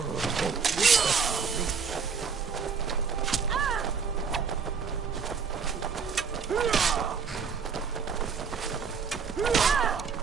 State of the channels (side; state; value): left; quieter; 5.9 dB